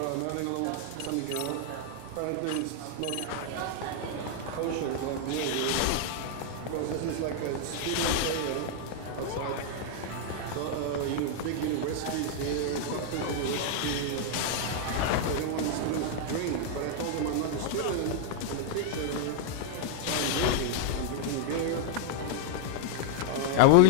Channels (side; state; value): both; different; correlation -0.01